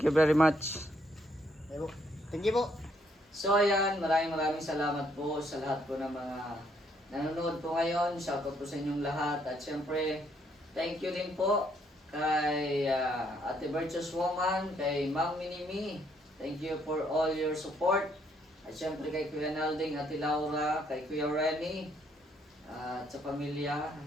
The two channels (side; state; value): both; normal; correlation 0.70